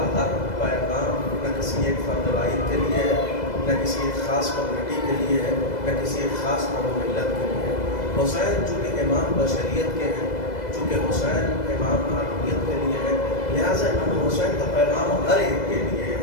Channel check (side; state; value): right; late; 2.0 ms